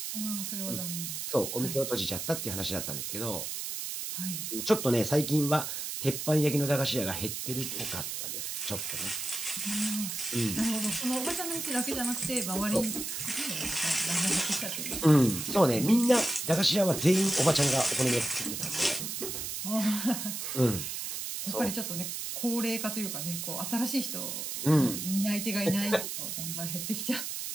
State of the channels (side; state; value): right; noise; hiss, 4 dB below the sound